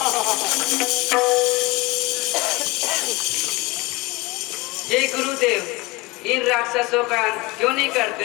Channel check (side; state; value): right; quieter; 23.5 dB